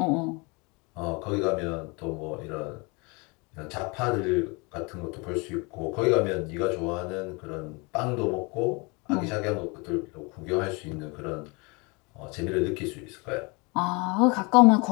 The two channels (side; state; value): right; quieter; 28.6 dB